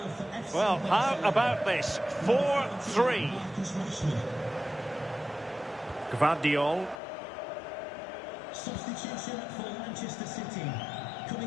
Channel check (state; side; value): drops out; right; at 7.0 s